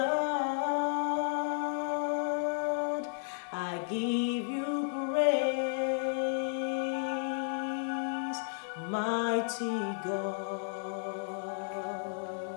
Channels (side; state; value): right; silent; digital silence